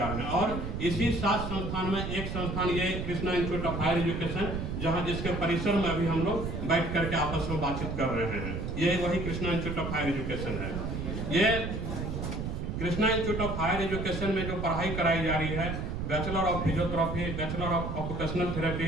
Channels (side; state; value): right; noise; rumble, 4 dB below the sound